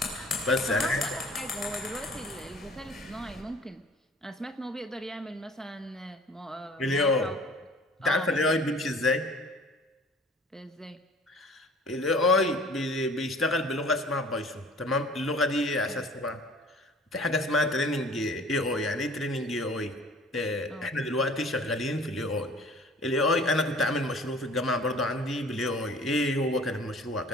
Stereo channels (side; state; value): both; normal; correlation 0.48